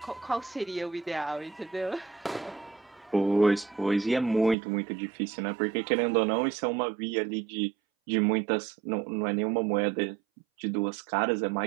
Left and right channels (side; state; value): left; drops out; at 4.5 s